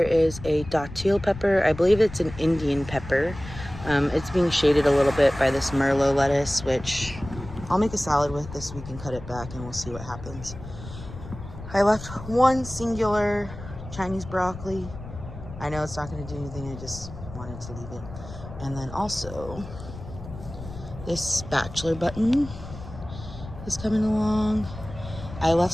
is a datil pepper. I believe it's an Indian pepper. It's being shaded a little bit by this Merlot lettuce, which I'll make a salad with this week and cut it back and we'll see what happens. I left one singular Chinese broccoli. I know it's not going to do anything, I just wanted to leave it. And then also, this spatula button is coming along. I left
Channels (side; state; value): left; noise; rumble, 13 dB below the sound